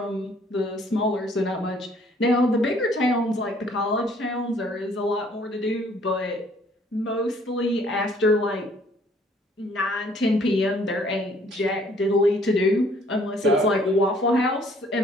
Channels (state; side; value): normal; both; correlation 0.60